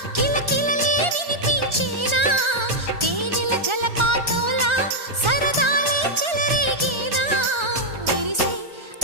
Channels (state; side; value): late; left; 1.3 ms